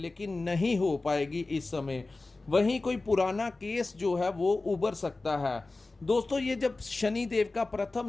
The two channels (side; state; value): right; quieter; 3.3 dB